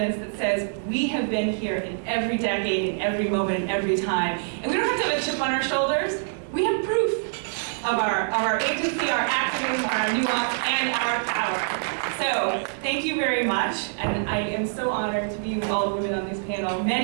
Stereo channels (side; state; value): left; silent; digital silence